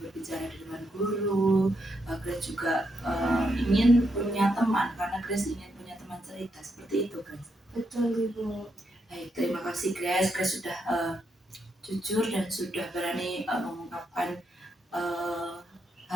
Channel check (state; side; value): normal; both; correlation 0.80